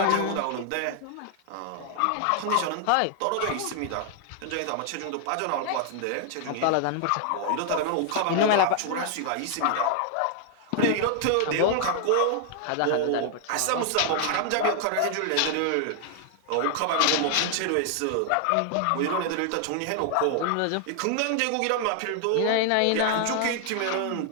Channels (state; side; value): different; both; correlation 0.00